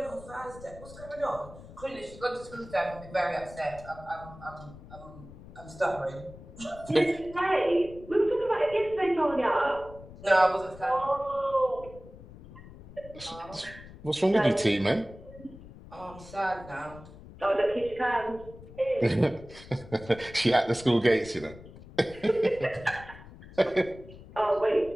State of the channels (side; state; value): left; noise; rumble, 18 dB below the sound